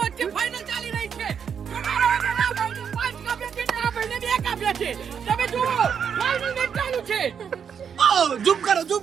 વચ્ચે ફાઇનલ ચાલી રહી છે. તમારા ભાઈને 5 કાપ્યા છે ને આ ભાઈને 2 કાપ્યા છે. તમે જુઓ ફાઇનલ મેચ ચાલુ છે. ઝૂમ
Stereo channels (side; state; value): left; quieter; 7.4 dB